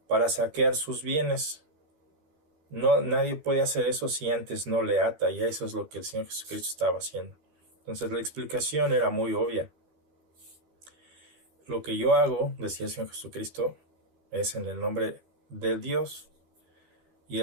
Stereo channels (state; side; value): late; left; 13 ms